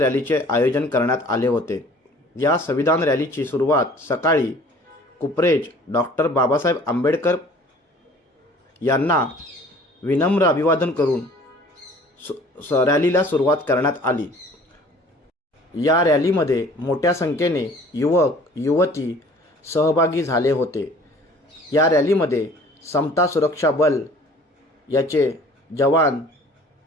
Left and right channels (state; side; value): normal; both; correlation 0.50